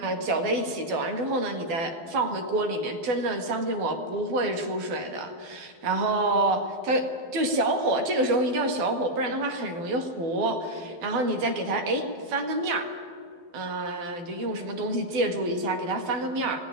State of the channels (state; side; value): late; left; 12 ms